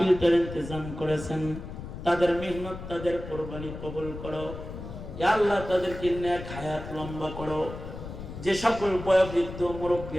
ইন্তজাম করেছেন, তাদের মেহনত, তাদের কুরবানি কবুল করো। ইয়া আল্লাহ তাদেরকে নেক হায়াত লম্বা করো। যে সকল বয়োবৃদ্ধ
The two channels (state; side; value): noise; left; rumble, 10 dB below the sound